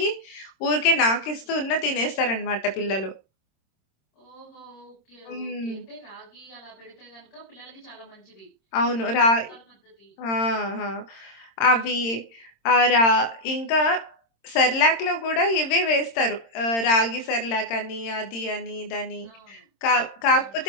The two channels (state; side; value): late; right; 26 ms